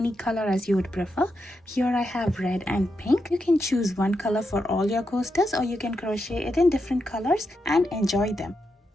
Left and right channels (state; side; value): normal; both; correlation 0.85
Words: color as you would prefer. Here I have red and pink. You can choose one color for all your coasters, or you can crochet it in different colors and enjoy them.